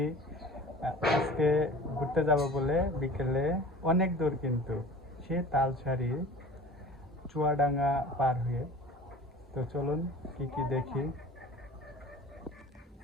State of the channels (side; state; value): both; normal; correlation 0.41